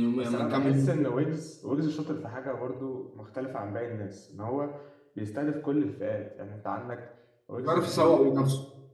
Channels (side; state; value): both; identical; correlation 1.00